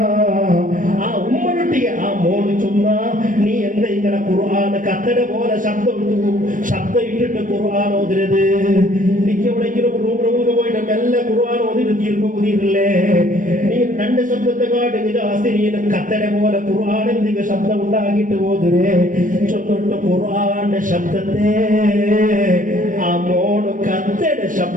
ആ ഉമ്മനൊട്ടിಗೆ ആ മോട് ചൊന്ന നീ എന്താ ഇങ്ങനെ ഖുർആൻ കത്തട പോലെ ശബ്ദം ഇട്ടിട്ട് ഖുർആൻ ഓതിരത്. എനിക്ക് എവിടെയെങ്കിലും റൂമിലൊക്കെ പോയിട്ട് മെല്ലെ ഖുർആൻ ഓതിട്ട് തീർപ്പുതിരില്ലേ. നീ രണ്ട് ശബ്ദത്തെ കാട്ടി ജാസ്തി നീ കത്തട പോലെ ഖുർആൻ എന്തെങ്കിലും ശബ്ദം ഉണ്ടാക്കിയിട്ട് ഓതിരേ. ചൊന്നിട്ട് ഖുർആന്റെ ശബ്ദത്തെ ആ മോട് കത്തട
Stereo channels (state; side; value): late; left; 0.38 ms